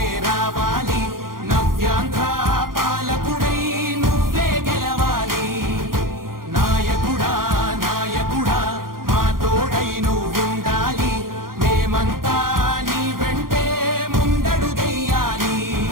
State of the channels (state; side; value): late; left; 0.91 ms